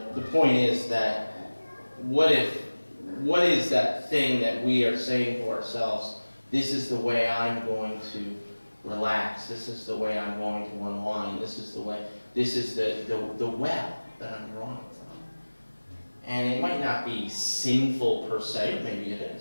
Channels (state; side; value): inverted; both; correlation -1.00